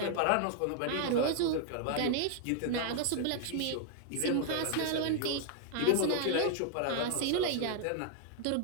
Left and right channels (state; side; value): different; both; correlation 0.00